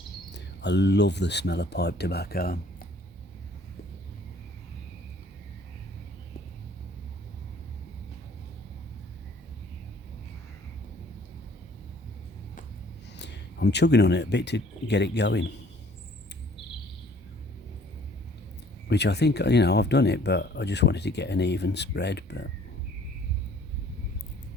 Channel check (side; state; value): both; normal; correlation 0.56